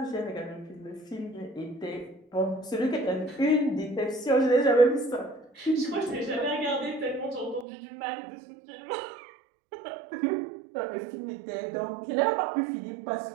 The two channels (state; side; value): drops out; left; at 7.7 s